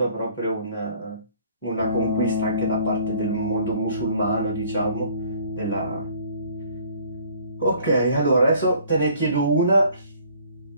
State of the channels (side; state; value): both; inverted; correlation -0.56